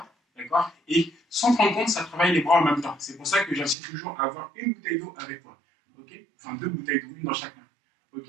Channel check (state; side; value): drops out; left; at 3.8 s